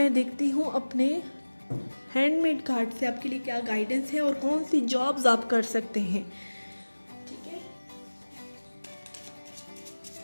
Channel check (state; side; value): inverted; both; correlation -1.00